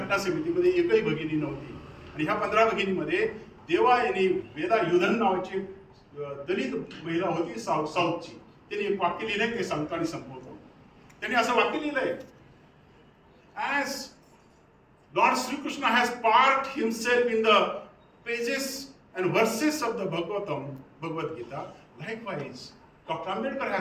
समितीमध्ये एकही भगिनी नव्हती. आणि ह्या 15 भगिनीमध्ये देवायनी वेदा युधन नावाची दलित महिला होती साऊथची. त्यांनी एक वाक्य लिहिलंय, ते सांगतो आणि संपवतो. त्यांनी असं वाक्य लिहिलंय, as lord Shrikrishna has parked himself in the pages and verses of the Bhagavad Gita, likewise Dr. Ambedkar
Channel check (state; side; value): identical; both; correlation 1.00